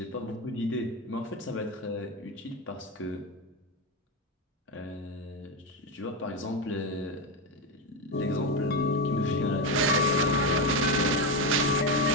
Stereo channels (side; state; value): both; normal; correlation 0.12